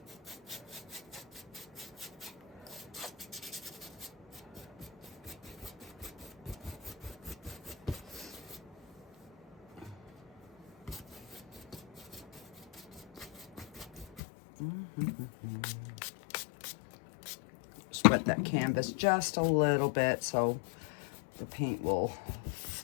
Just wet that canvas just a little bit so the paint will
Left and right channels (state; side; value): drops out; right; at 14.2 s